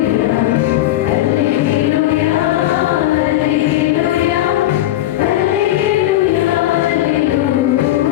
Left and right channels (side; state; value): right; quieter; 14.2 dB